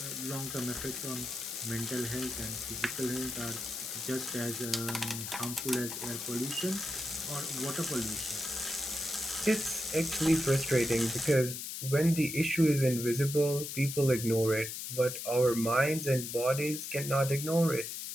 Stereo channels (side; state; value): left; noise; hiss, 6 dB below the sound